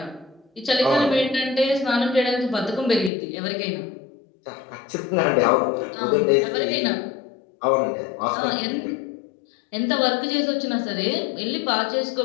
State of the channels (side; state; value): right; drops out; at 3.1 s